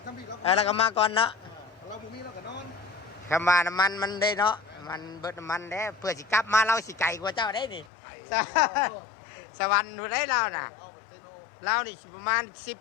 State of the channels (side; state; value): right; drops out; at 7.9 s